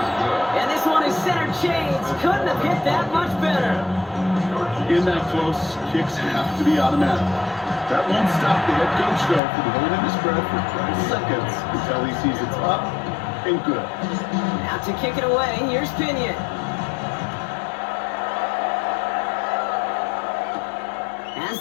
And this one is center chains. Couldn't have hit that much better. In that close, kicks have to be automatic. That won't stop the head coach, though, from holding his breath for 20 seconds until he sees it's up and good. Now to kick it away, here's Pinion. Has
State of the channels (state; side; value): drops out; right; at 9.4 s